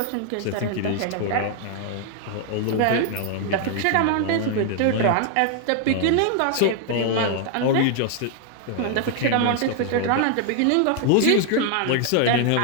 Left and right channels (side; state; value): both; different; correlation 0.00